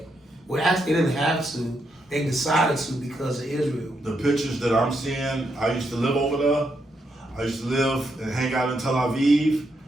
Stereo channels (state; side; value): normal; both; correlation 0.80